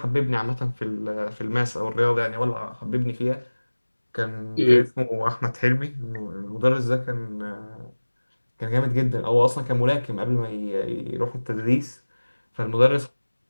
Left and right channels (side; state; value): both; inverted; correlation -1.00